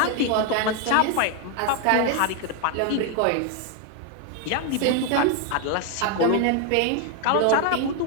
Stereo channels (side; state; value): both; different; correlation 0.01